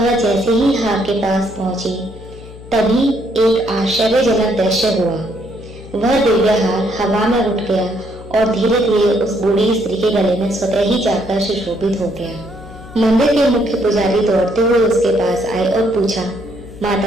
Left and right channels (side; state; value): left; noise; hum, 17 dB below the sound